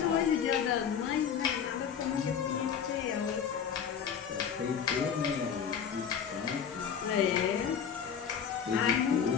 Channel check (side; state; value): right; quieter; 7.6 dB